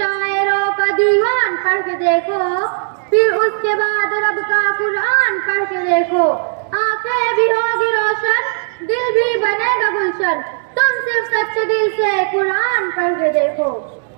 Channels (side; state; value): left; silent; digital silence